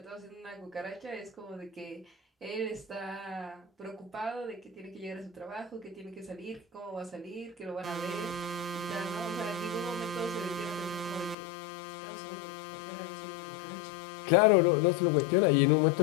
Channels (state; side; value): drops out; right; at 11.4 s